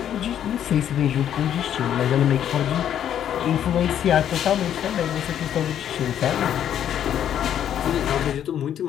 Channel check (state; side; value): quieter; right; 10.1 dB